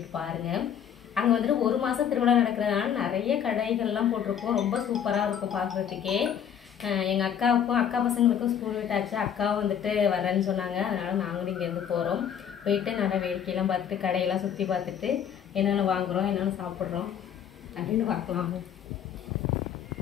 பாருங்க. அங்க வந்துட்டு ஒரு மாசம் திருவிழா நடக்கிறதுனால நிறைய கடைகள்லாம் போட்டிருக்கோம். ரொம்ப சூப்பரா இருக்கும் பார்க்கறதுக்கே. எங்கள் அக்காவுக்கும் அக்கா பசங்களுக்கும் ஸ்கூல் விட்டாச்சு. அக்காவும் வந்துட்டு வரேன்னு சொன்னாங்க. அதனால் நாங்களும் இங்கேருந்து போகிறோம். போயிட்டு நல்லா வேடிக்கையெல்லாம் பார்த்துட்டு கடையெல்லாம் சுற்றி பார்த்துட்டு என்னென்ன வாங்குகிறோம் என்னென்ன சாப்பிட்றோம் அப்படின்னு பார்க்கலாம்.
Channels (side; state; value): right; quieter; 8.7 dB